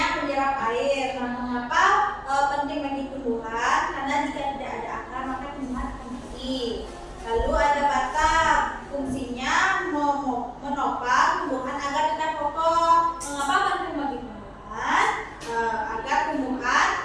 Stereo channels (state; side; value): identical; both; correlation 1.00